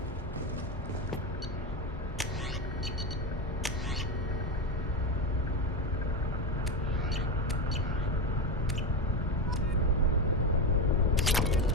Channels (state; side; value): normal; both; correlation 0.15